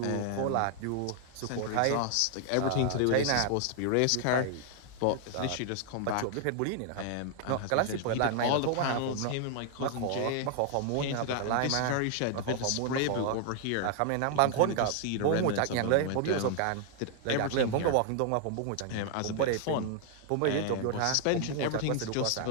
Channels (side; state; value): both; different; correlation 0.00